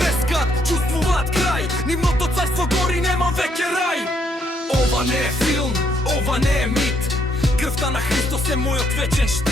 чувствуваат крај. Нивното царство гори, нема веќе рај. Ова не е филм, ова не е мит. Крвта на Христос е мојот вечен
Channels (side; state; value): both; normal; correlation 0.72